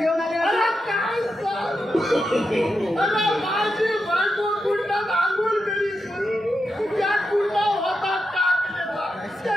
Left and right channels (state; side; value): normal; both; correlation 0.87